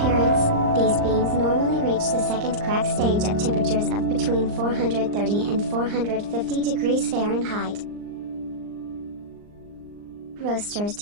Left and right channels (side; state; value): left; late; 39 ms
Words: these beans normally reach the second crack stage at temperatures of between 430 and 450 degrees Fahrenheit. Roasters